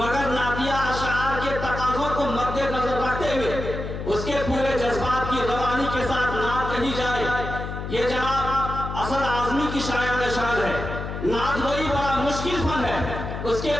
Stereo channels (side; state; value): left; noise; hum, 6 dB below the sound